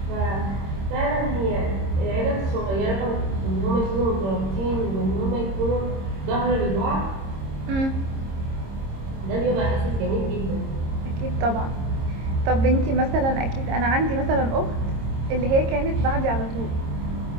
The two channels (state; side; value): late; left; 26 ms